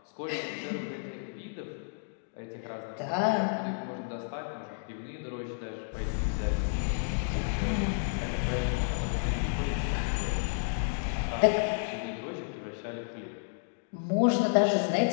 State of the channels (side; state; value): right; silent; digital silence